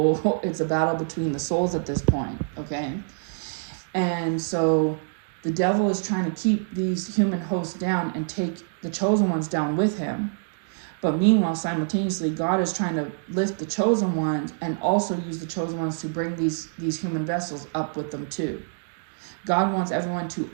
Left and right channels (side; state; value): left; silent; digital silence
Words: it's a battle between the souls at this point, okay? And so the devil is trying to keep these human hosts down and take the chosen ones down with him. But meanwhile, simultaneously, God is trying to lift the chosen ones and also use the chosen ones to bring these human vessels up with them too. God wants everyone to